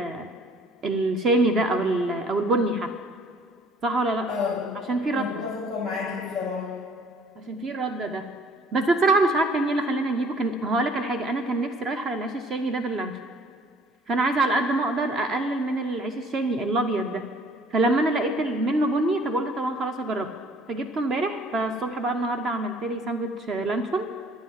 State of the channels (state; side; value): normal; both; correlation 0.56